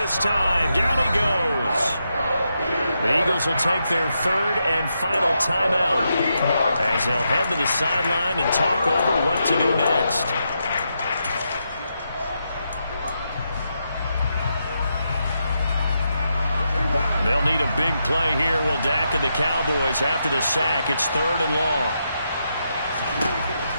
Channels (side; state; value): both; inverted; correlation -0.83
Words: time. Down he goes. The Eagles will take their 3rd and final timeout as they'll head to the sideline and talk over what to do next. They'll need a big play here, will Dak and the Cowboys after the sack. It's 3rd and long.